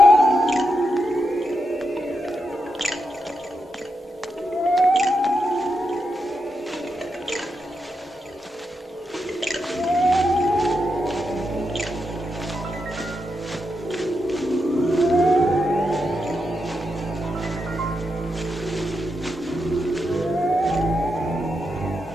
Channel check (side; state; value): both; normal; correlation 0.85